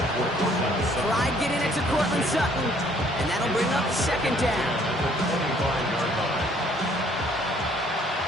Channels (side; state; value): both; normal; correlation 0.61